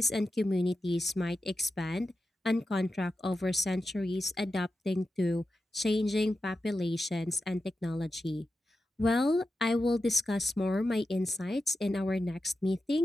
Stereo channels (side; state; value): both; normal; correlation 0.90